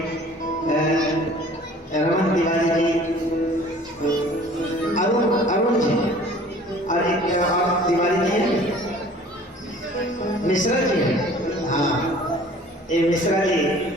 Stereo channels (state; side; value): normal; both; correlation 0.50